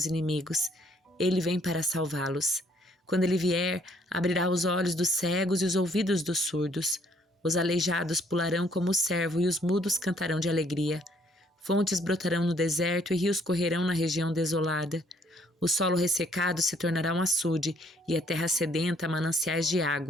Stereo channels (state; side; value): normal; both; correlation 0.65